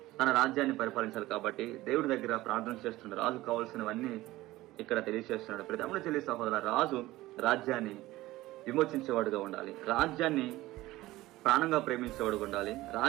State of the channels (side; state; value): left; quieter; 17.6 dB